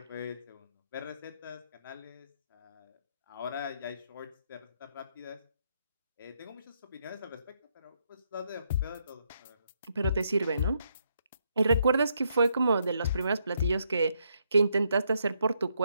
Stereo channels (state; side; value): inverted; both; correlation -0.76